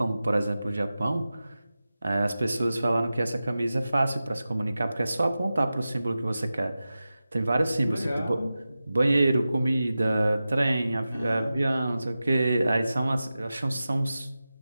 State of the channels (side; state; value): both; inverted; correlation -0.94